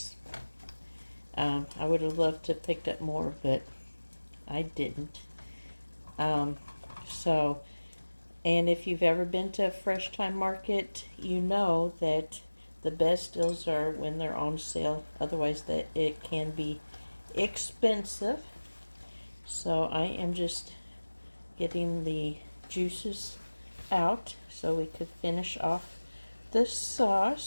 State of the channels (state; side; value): inverted; both; correlation -1.00